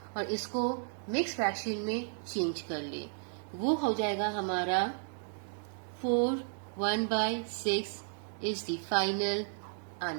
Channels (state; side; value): silent; left; digital silence